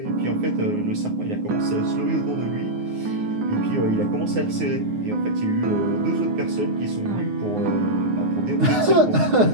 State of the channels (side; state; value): left; late; 9.5 ms